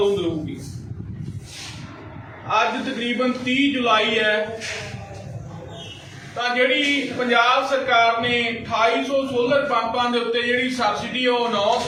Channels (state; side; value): identical; both; correlation 1.00